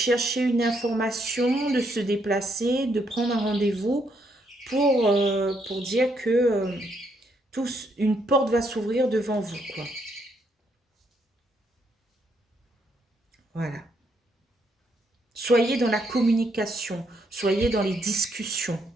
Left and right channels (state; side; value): normal; both; correlation 0.74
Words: une information, de se déplacer, de prendre un rendez-vous pour dire que une porte va s'ouvrir devant vous, quoi. Voilà. Soyez dans la communication, soyez dans les discussions.